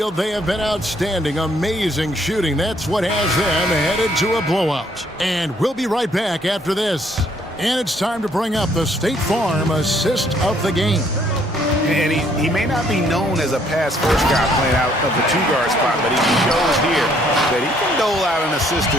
they have been outstanding, amazing shooting. That's what has them headed to a blowout. And we'll be right back after this. And it's time to bring up the State Farm assist of the game. And he may not be known as a pass-first guy playing out of the two-guard spot, but he shows here that he can dole out an assist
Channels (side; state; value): both; normal; correlation 0.66